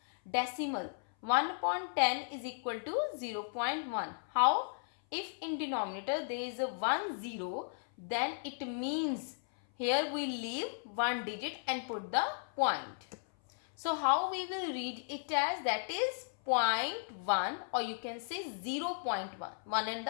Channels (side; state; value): right; silent; 54 dB below the other